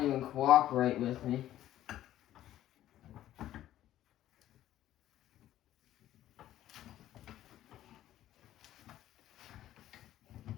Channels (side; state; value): right; quieter; 13.0 dB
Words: even cooperate with me.